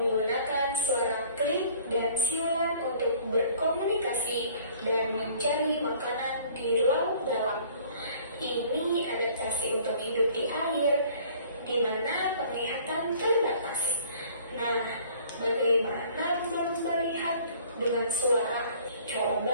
suara klik dan siulan untuk berkomunikasi dan mencari makanan di laut dalam. Ini adaptasi untuk hidup di air, di mana penglihatan terbatas. Nah, bagaimana lumba-lumba lihat dengan suara?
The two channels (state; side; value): inverted; both; correlation -0.53